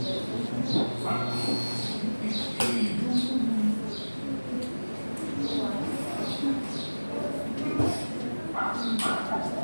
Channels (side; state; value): both; inverted; correlation -1.00